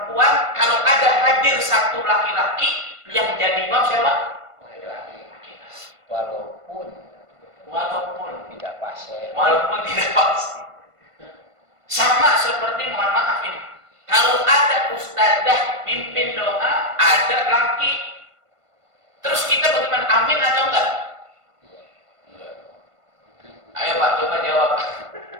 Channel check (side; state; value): left; late; 1.5 ms